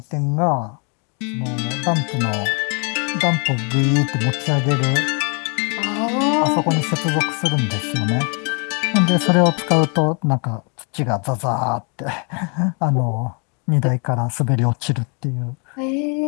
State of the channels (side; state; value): right; quieter; 36.5 dB